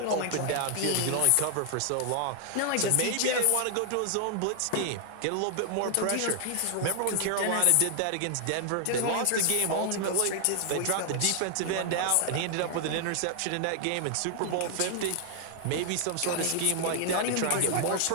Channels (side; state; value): both; different; correlation 0.00